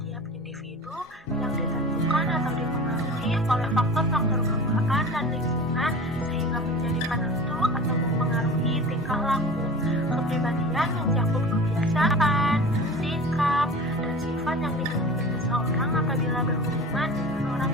individu yang ditentukan atau dipengaruhi oleh faktor-faktor bawaan dan lingkungan sehingga menjadi penentu atau mempengaruhi tingkah laku. Kepribadian mencakup kebiasaan, sikap, dan sifat yang dimiliki seseorang apabila berhubungan dengan orang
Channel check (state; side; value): normal; both; correlation 0.37